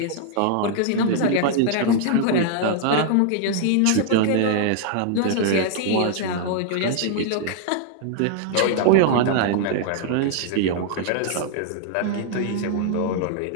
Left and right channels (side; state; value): both; different; correlation -0.01